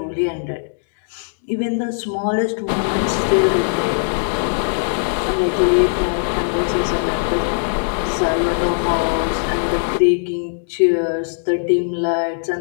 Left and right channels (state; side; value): silent; right; digital silence